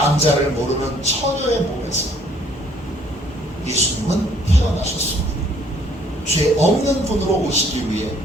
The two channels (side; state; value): both; normal; correlation 0.61